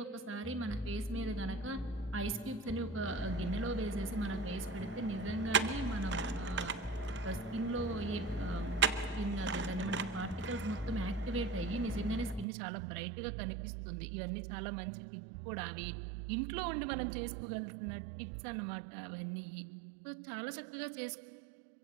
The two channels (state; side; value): drops out; left; at 12.5 s